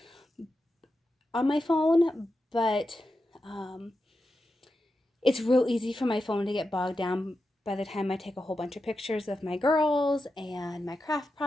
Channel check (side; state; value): both; normal; correlation 0.89